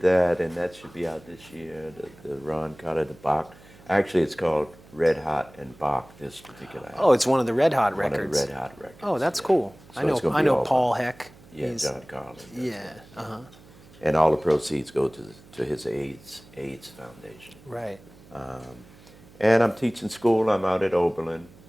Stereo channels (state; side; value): noise; right; hum, 24 dB below the sound